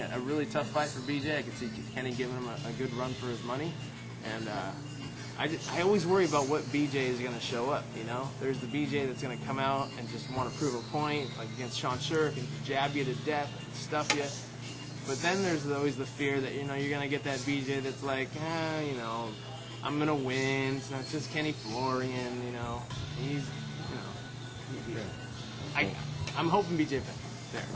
a really tough fight for BJ. I could see Kenny giving him a good run for his money. And I always worry about what BJ is going to show up, There's the BJ that's going to come out and just want to prove a point, like against Sean Shirk, and jab you to death, and stuff you. But then there's always the fear that, you're going to get that BJ that's like, I'm going to win. It's not just Kenny Florian, He's, I'm hoping BJ Penn.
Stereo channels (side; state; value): both; identical; correlation 1.00